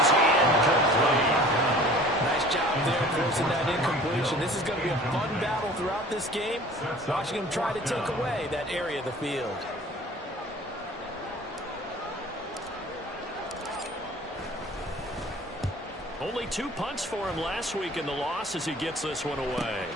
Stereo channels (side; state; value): both; normal; correlation 0.47